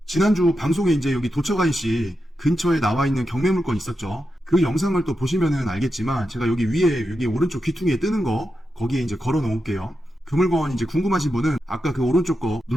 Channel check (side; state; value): both; normal; correlation 0.88